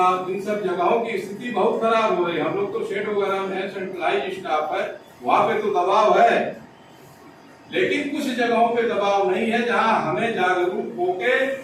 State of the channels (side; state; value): both; identical; correlation 1.00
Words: इन सब जगहों की स्थिति बहुत खराब हो रही है। हम लोग तो शेड वगैरह में सेंट्रलाइज स्टाफ है, वहां पे तो दबाव है, लेकिन कुछ जगहों पे दबाव नहीं है, जहां हमें जागरूक होके